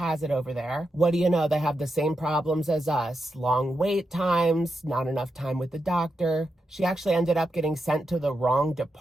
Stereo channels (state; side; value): normal; both; correlation 0.86